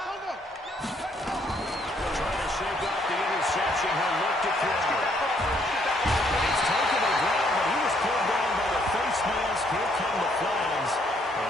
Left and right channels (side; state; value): both; normal; correlation 0.68